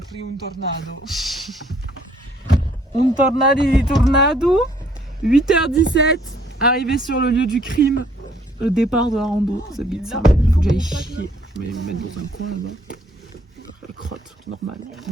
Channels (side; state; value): both; normal; correlation 0.63